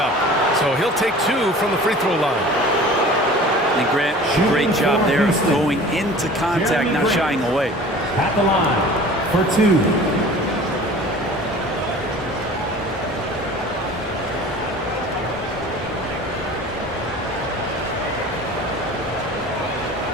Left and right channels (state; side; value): normal; both; correlation 0.43